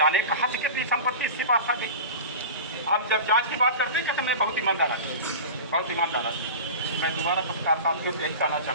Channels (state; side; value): inverted; both; correlation -0.31